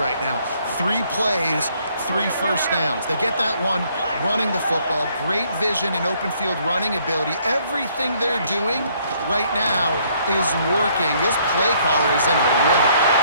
now? 3 plays, 3 first downs. They get that one running the football, great vision and open field running ability. Everything they're doing right now is working. This play caller is in a rhythm.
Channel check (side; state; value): both; inverted; correlation -0.66